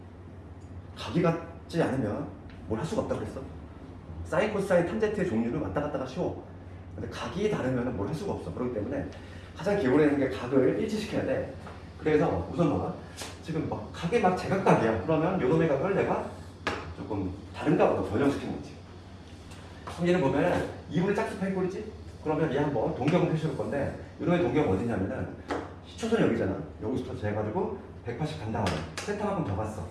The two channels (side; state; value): both; identical; correlation 1.00